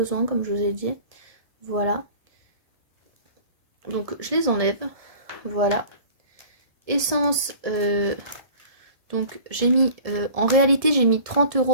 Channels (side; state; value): left; late; 1.7 ms